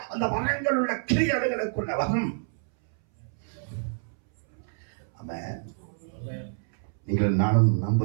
அந்த வளங்கள் உள்ள கிரியைகளுக்குள்ள வரும். ஆமென். நீங்கள் நானும்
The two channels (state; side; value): silent; left; 60 dB below the other